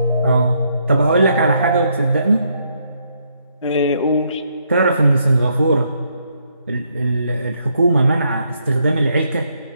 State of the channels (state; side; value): inverted; both; correlation -0.74